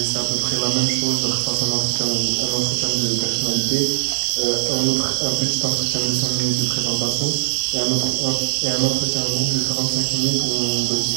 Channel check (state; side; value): silent; left; digital silence